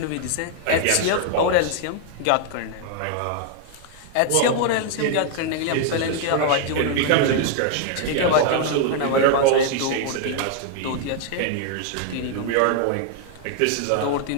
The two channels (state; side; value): different; both; correlation 0.00